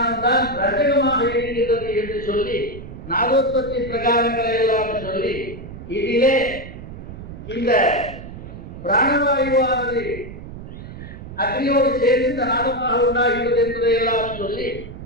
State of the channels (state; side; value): noise; right; rumble, 12 dB below the sound